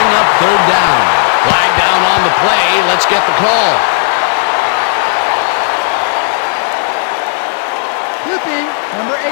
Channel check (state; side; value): silent; right; digital silence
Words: up 3rd down. Flag down on the play. Let's get the call. Clipping, number